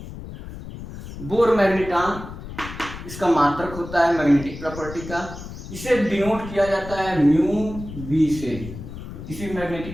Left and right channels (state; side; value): noise; left; rumble, 11 dB below the sound